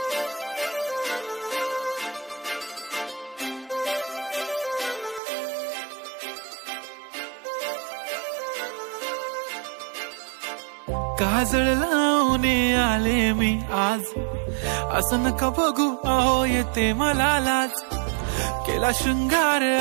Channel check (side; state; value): left; drops out; at 5.2 s